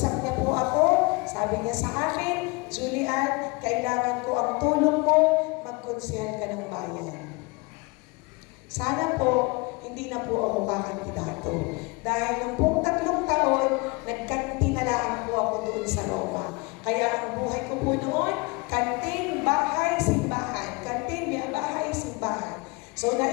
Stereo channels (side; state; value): right; quieter; 27.3 dB